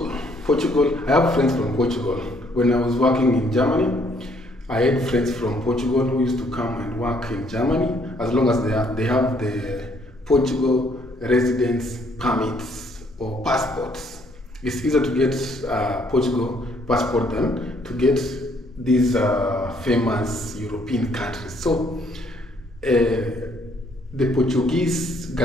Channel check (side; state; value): both; normal; correlation 0.66